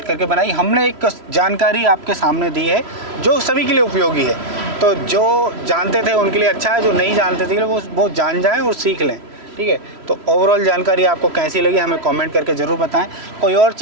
करके बनाई। हमने एक जानकारी आपके सामने दी है जो सभी के लिए उपयोगी है। तो जो जानते थे उनके लिए अच्छा है, जो नहीं जानते थे वो जान जाएं और सीख लें। ठीक है, तो ओवरऑल जानकारी आपको कैसी लगी हमें कमेंट करके ज़रूर बताएं। कोई और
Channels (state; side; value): late; left; 3.0 ms